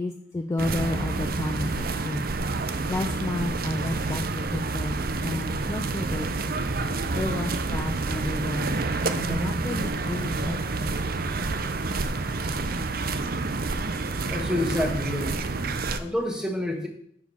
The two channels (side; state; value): both; normal; correlation 0.64